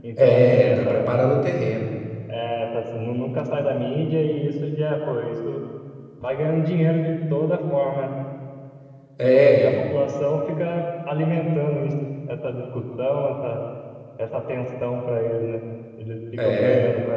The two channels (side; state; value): both; identical; correlation 1.00